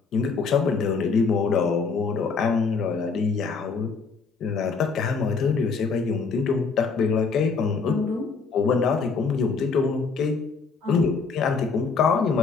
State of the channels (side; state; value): right; quieter; 4.9 dB